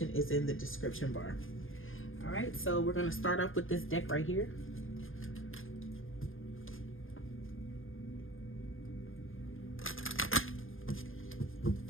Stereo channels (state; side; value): late; right; 0.59 ms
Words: is in the description bar. All right, so we're going to start off with this deck right here.